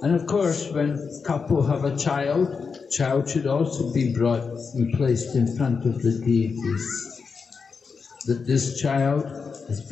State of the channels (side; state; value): right; quieter; 5.3 dB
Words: And of course, when couple have a child should also be brought and placed in front of the deities. That this child has